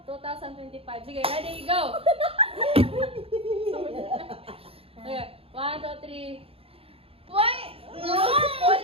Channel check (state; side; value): late; left; 0.27 ms